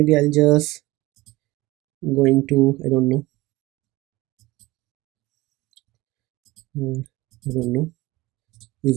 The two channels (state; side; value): quieter; left; 19.8 dB